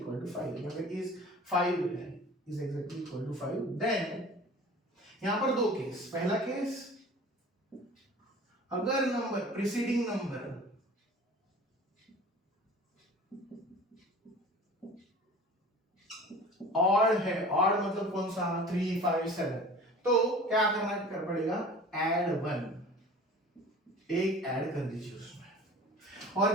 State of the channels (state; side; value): normal; both; correlation 0.42